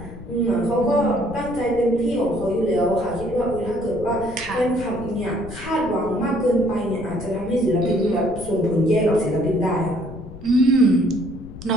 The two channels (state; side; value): noise; left; rumble, 14 dB below the sound